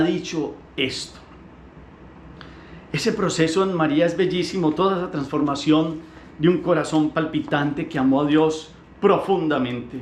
dicho esto. Ese proceso en María es bellísimo, toda esa transformación de un corazón palpitante que amó a Dios profundamente,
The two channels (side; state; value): both; identical; correlation 1.00